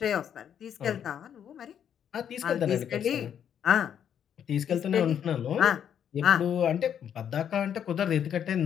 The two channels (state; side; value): quieter; right; 8.9 dB